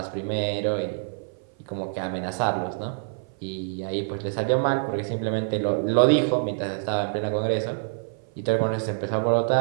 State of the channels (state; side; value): silent; left; 56 dB below the other